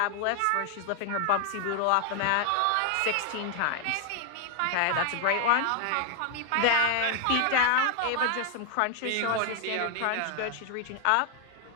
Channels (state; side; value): different; both; correlation 0.00